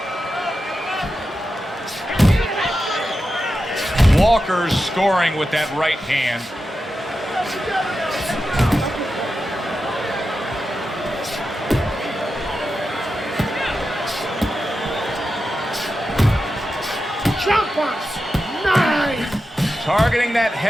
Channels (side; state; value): both; normal; correlation 0.90